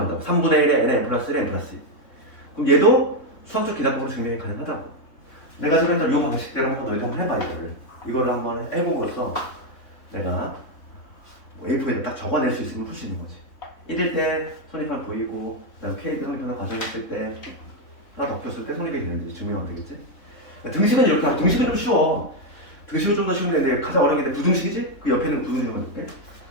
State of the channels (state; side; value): late; right; 3.6 ms